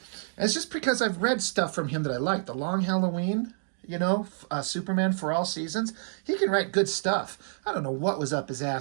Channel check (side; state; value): left; silent; digital silence